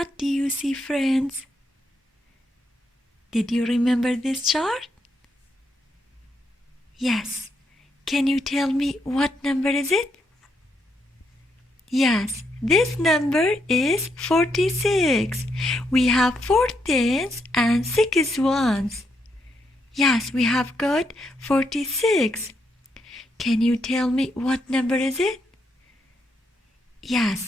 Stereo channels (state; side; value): normal; both; correlation 0.78